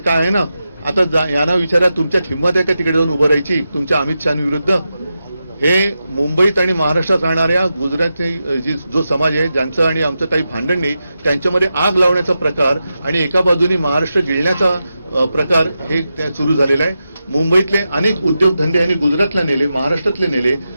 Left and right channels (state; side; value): inverted; both; correlation -0.89